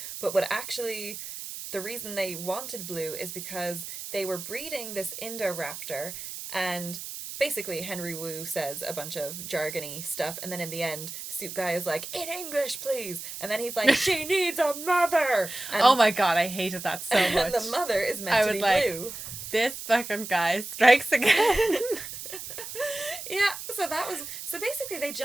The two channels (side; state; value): right; noise; hiss, 9 dB below the sound